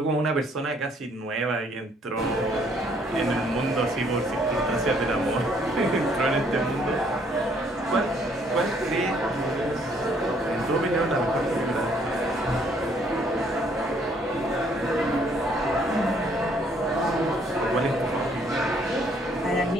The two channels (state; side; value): normal; both; correlation 0.65